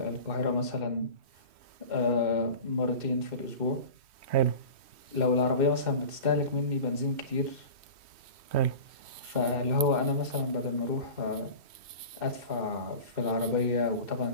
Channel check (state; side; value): late; left; 3.1 ms